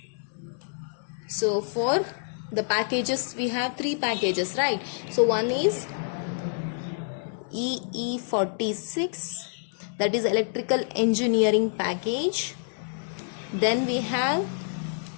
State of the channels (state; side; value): silent; right; digital silence